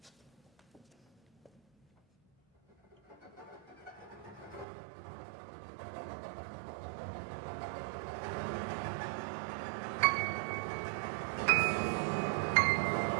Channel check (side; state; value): left; drops out; at 4.7 s